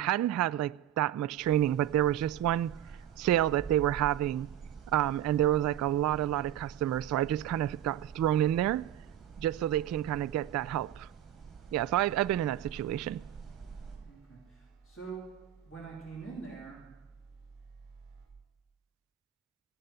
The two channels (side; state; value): left; quieter; 11.7 dB